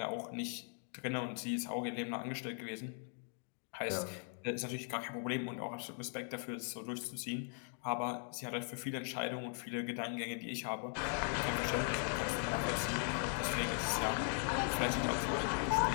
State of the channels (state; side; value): silent; right; 52 dB below the other